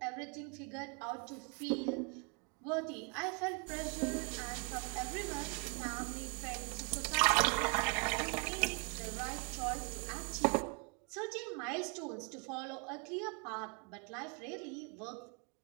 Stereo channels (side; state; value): left; quieter; 35.2 dB